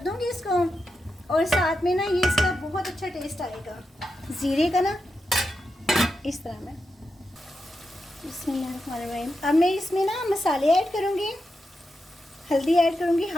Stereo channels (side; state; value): both; normal; correlation 0.87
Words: दूँगी इसको। और साथ में ना ये इसका बहुत अच्छा टेस्ट आएगा ज़ीरे का ना, इस तरह में। बिस्मिल्लाहिर्रहमानिर्रहीम। अब मैं इसमें ना मसाले ऐड करूँगी। हल्दी ऐड करूँगी